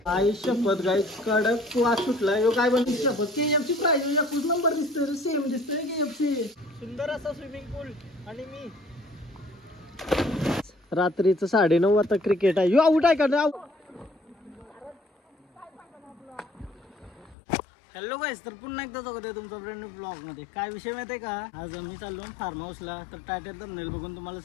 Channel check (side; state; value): right; drops out; at 17.4 s